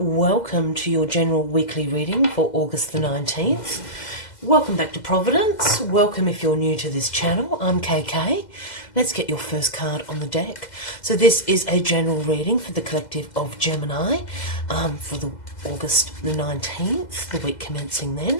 to your general weekly reading for August the 19th. Welcome back to Providence. Welcome if you're new to this channel. I'm KK. Let's get your first card on the deck. So this is a general reading for the collective of Gemini for the August the 19th, the week commencing then.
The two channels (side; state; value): right; late; 2.0 ms